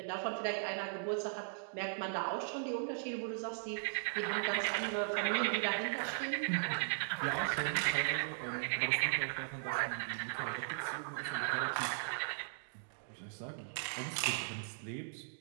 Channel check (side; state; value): left; silent; digital silence